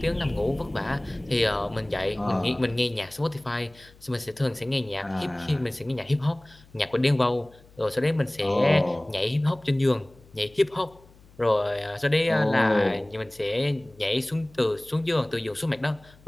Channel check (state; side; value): noise; left; hum, 26 dB below the sound